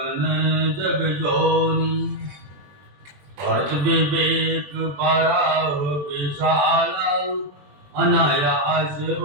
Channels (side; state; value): left; late; 21 ms